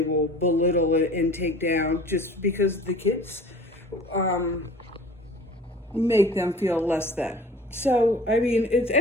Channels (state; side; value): normal; both; correlation 0.45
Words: belittle and take down just because the kids make them feel less than. So I mean, it's